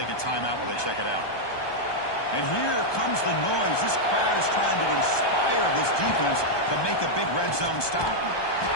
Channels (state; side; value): late; right; 1.2 ms